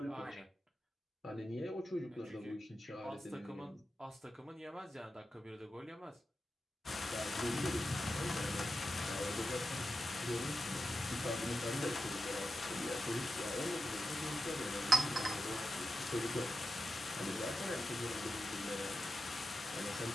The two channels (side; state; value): both; normal; correlation 0.89